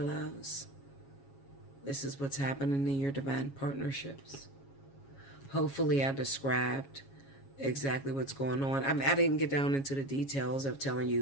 This is what's happening in your divine partnerships. Hopefully I described exactly what's going on. I didn't get down into the details of telling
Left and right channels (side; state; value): right; late; 7.3 ms